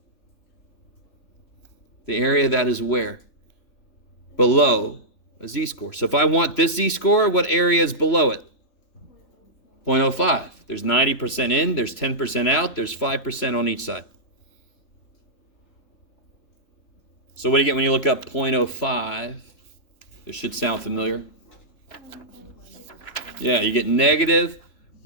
The area that is where? Below a z-score. So if I want this z-score, what area is below it? 0.05. There's 90% in, there's 10% out, there's 5% on each side. So what do you get when you look up 0.05? This should sound familiar. Yeah, you get negative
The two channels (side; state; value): right; late; 3.0 ms